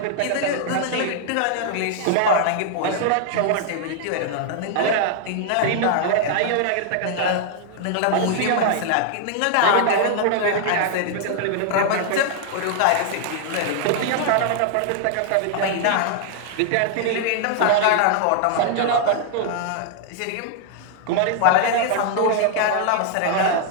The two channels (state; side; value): different; both; correlation 0.00